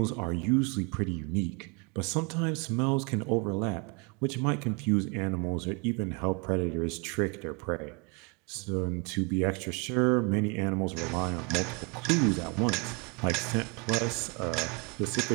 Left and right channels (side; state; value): left; quieter; 32.3 dB